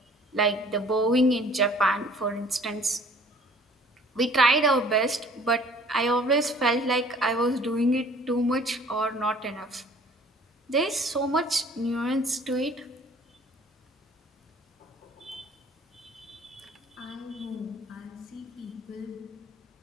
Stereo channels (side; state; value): both; normal; correlation 0.53